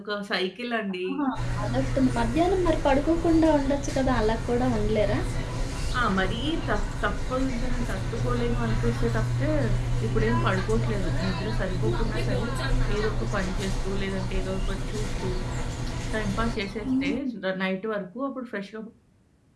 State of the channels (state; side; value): identical; both; correlation 1.00